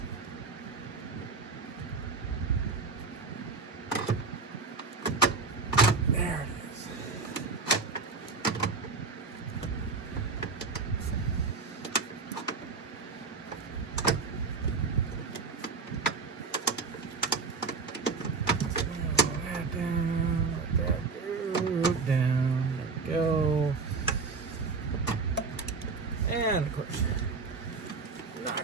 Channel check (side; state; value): left; quieter; 4.4 dB